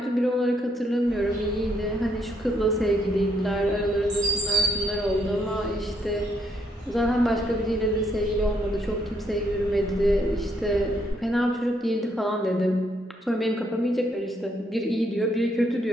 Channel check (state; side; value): normal; both; correlation 0.73